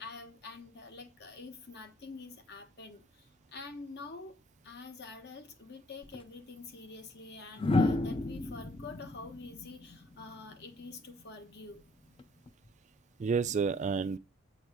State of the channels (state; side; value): normal; both; correlation 0.61